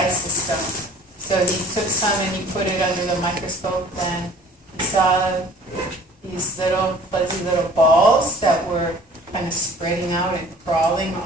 system? So he took some and he put it under the microscope, and he saw these little fuzzy little balls that were kind of spreading out and crawling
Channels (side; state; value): both; normal; correlation 0.50